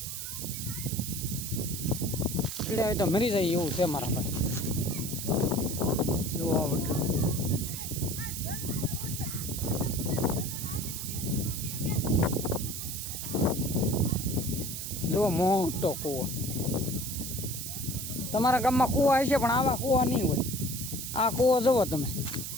એટલે હવે તો મરી જાય એવું છે મારા ભાઈ. જો આ વડલો જો મોટો કૂવો. તમારા ગામમાં કૂવા હશે પણ આવા કૂવા નહીં હોય. આ કૂવો જુઓ તમે,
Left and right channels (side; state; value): right; noise; hiss, 6 dB below the sound